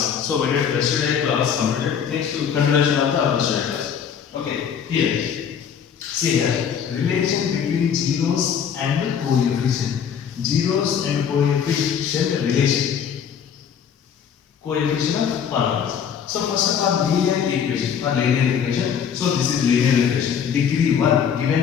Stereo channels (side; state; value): right; quieter; 7.8 dB